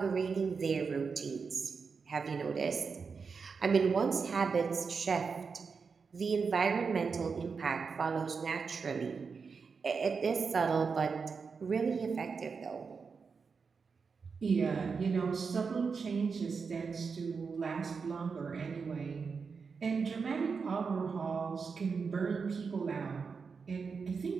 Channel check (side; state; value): left; quieter; 5.3 dB